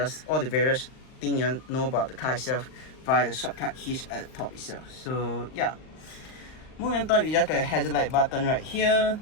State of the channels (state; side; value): late; right; 39 ms